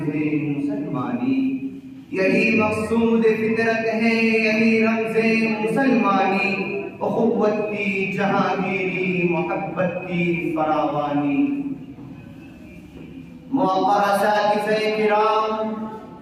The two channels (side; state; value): both; identical; correlation 1.00